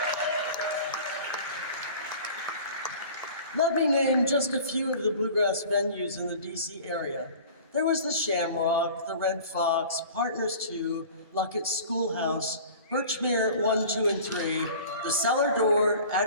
Let me name just a few of the bluegrass venues in the DC area. There was the Shamrock, the Red Fox, Partners 2, Luckett's Schoolhouse, Birchmere 1, 2, and 3, the Cellar Door,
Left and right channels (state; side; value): inverted; both; correlation -0.43